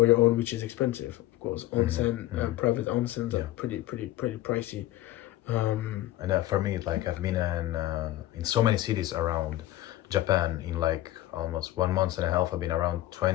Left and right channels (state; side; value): quieter; right; 15.3 dB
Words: your own, which is expensive, of course. Onsen, private onsens are pretty pricey. And for me, like, I've been in so many cities around Japan in like almost 1 month and a half. I've been around